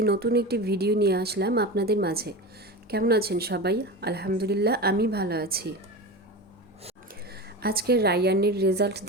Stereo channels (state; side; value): normal; both; correlation 0.26